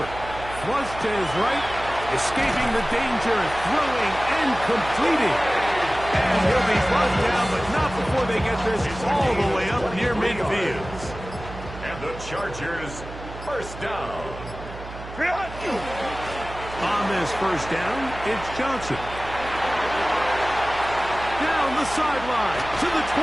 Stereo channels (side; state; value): right; noise; hum, 13 dB below the sound